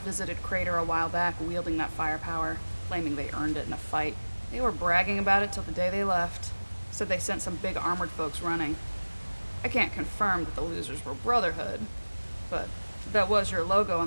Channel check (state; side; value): inverted; both; correlation -1.00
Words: Crater a while back wielding that firepower, claiming they earned it in a fight. They were bragging about it till the day they left. Said they sent some big armored folks running. I can't confirm that the losers were Brotherhood, but that was your logo on